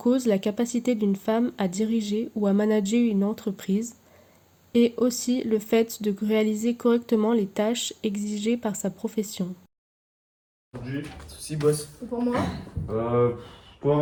la capacité d'une femme à diriger ou à manager une entreprise, et aussi le fait de réaliser correctement les tâches exigées par sa profession. Aujourd'hui, Souci, boss. Et pour moi?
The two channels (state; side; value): identical; both; correlation 1.00